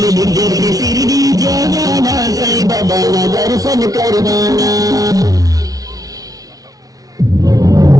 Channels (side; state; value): left; late; 0.18 ms